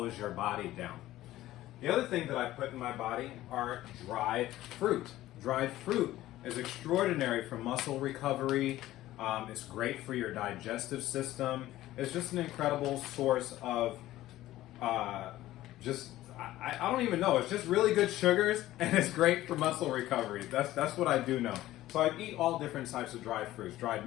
your body down. The other thing that I put in my body are dried fruit. Dried fruit is extraordinary for muscle recovery. It's great for your digestive system. It's just an incredible source of I don't even know. It's just really good sugars, and it's great for muscle recovery. That's what I do know. So I eat all different types of dried fruits: dried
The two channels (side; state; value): right; quieter; 15.3 dB